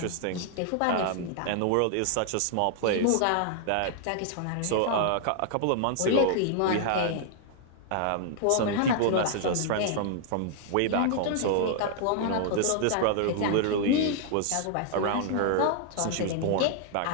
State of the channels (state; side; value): different; both; correlation 0.00